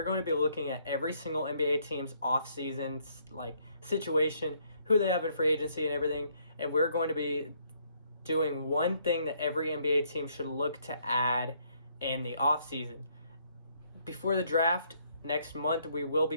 going to be looking at every single NBA team's offseason situation, who they have in free agency and everything, and we're going to be doing one thing that every NBA team should look to add in the offseason. Before the draft next month, we will be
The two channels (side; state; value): both; inverted; correlation -0.69